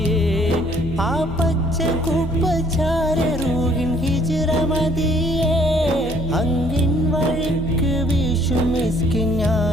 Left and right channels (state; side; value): normal; both; correlation 0.61